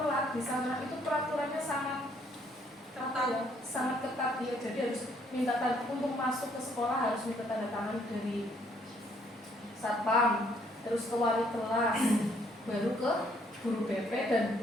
di sana itu peraturannya sangat ketat ya. Jadi harus minta tanda untuk masuk ke sekolah, harus minta tanda tangan dari satpam, terus ke wali kelas, baru ke guru BP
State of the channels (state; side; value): normal; both; correlation 0.67